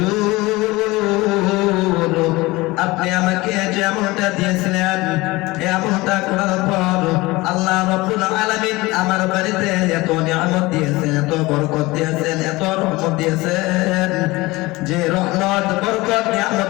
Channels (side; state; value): right; quieter; 21.1 dB